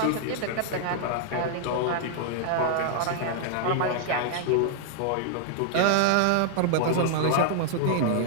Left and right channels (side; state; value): both; different; correlation -0.01